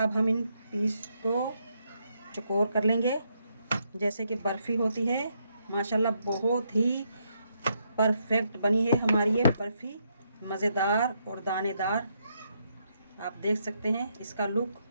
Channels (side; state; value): both; inverted; correlation -0.77